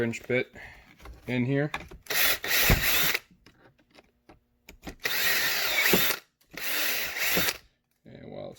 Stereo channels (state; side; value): identical; both; correlation 1.00